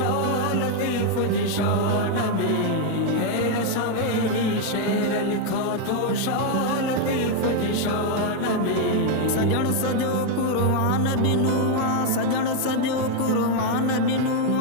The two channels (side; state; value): both; different; correlation 0.01